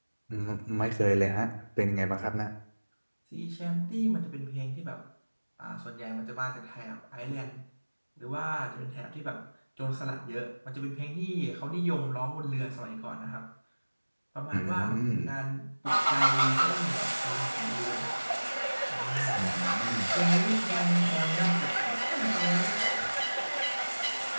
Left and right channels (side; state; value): both; inverted; correlation -1.00